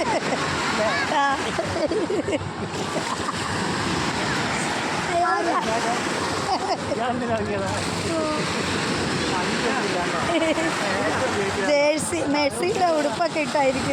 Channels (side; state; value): both; identical; correlation 1.00